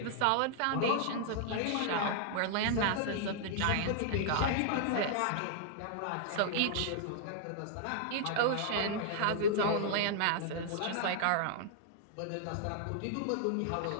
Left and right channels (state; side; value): different; both; correlation -0.01